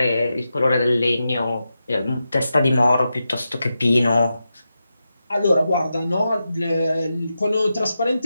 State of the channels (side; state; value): both; inverted; correlation -0.89